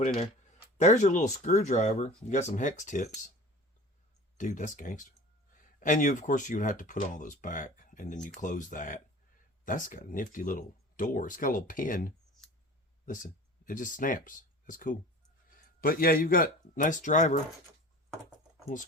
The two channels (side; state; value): both; normal; correlation 0.40